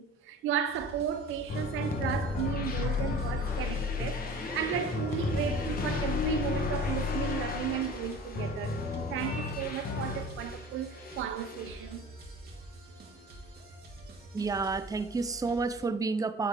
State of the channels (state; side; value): normal; both; correlation 0.41